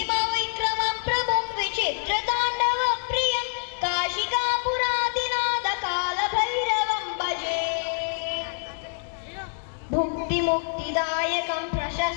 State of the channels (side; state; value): right; silent; digital silence